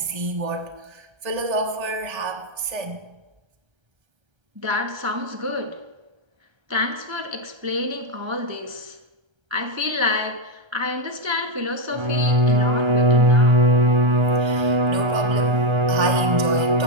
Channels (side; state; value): left; late; 1.3 ms